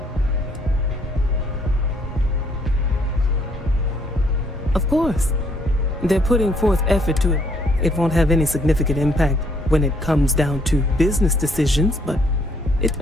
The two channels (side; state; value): both; normal; correlation 0.67